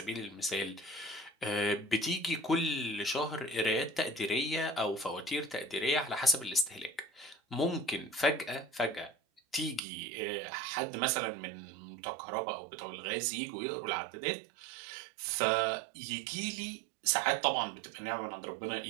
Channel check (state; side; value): drops out; left; at 9.8 s